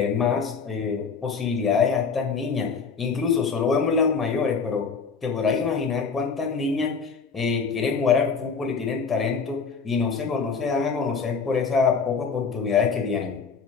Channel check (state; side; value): quieter; right; 5.3 dB